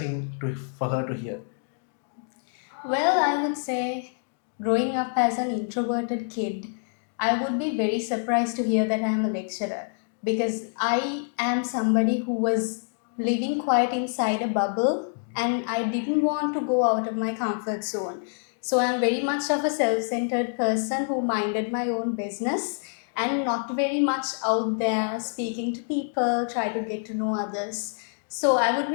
for her to hear? Well, I would say growing up as an introverted kid, I would be very surprised to hear that I am a lecturer because I am somebody who was living quite inside a bubble and I didn't want to go out of my comfort zone. So I'm very much of a self centered person who minded my own business and not very much out there speaking to people, try to get to know others. So I would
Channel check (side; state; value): right; silent; 61 dB below the other